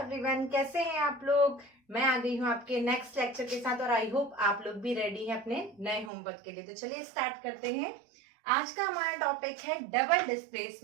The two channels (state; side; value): drops out; left; at 6.1 s